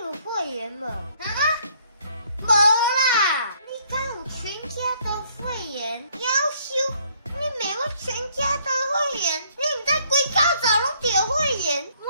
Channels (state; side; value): inverted; both; correlation -0.65